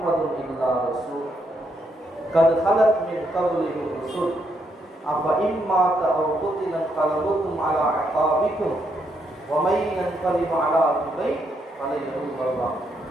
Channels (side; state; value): both; normal; correlation 0.77